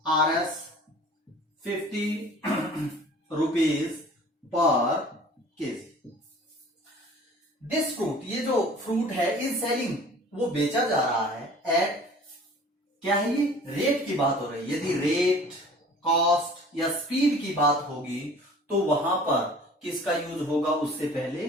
RS 50 rupees per KG. This fruit, ये जो फ्रूट है, इज सेलिंग, वो बेचा जा रहा है एट, क्या है ये, रेट की बात हो रही है। यदि रेट, कॉस्ट या स्पीड की बात होगी तो वहां पर किसका यूज होगा, उससे पहले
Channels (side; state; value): both; normal; correlation 0.47